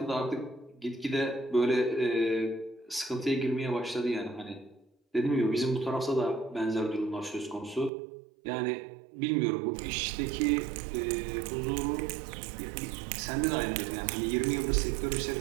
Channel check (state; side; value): drops out; left; at 7.9 s